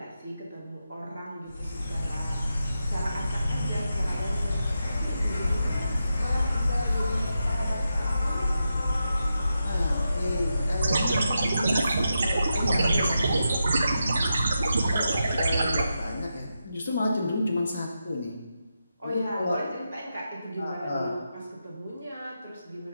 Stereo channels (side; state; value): both; inverted; correlation -0.87